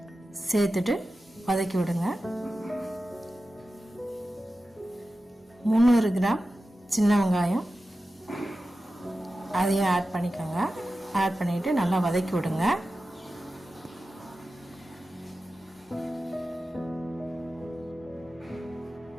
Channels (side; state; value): both; normal; correlation 0.93